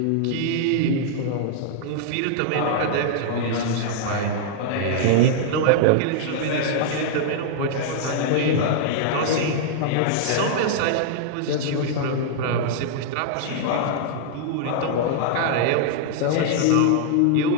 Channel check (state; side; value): different; both; correlation -0.01